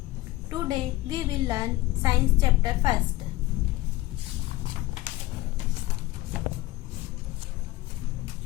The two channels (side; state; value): right; quieter; 17.7 dB